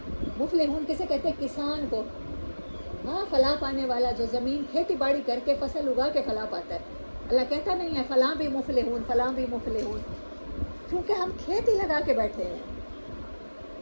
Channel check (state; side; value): inverted; both; correlation -1.00